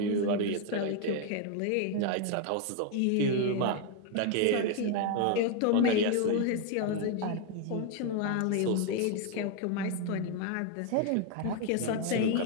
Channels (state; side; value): different; both; correlation 0.01